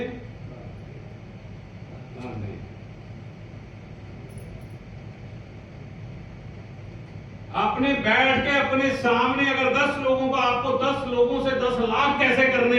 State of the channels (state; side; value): identical; both; correlation 1.00